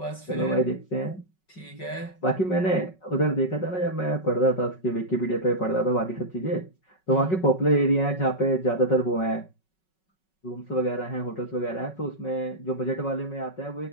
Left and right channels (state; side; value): late; right; 5.4 ms